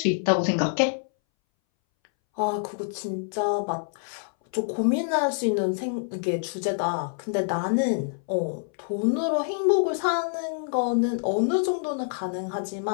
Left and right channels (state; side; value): silent; right; 61 dB below the other